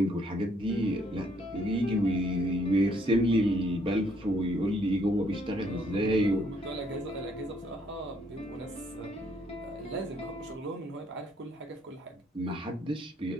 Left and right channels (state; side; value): normal; both; correlation 0.67